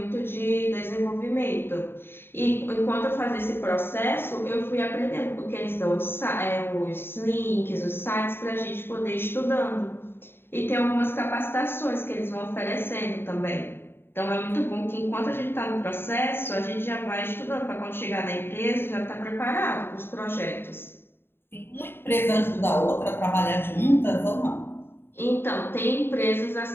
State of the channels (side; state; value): right; late; 0.11 ms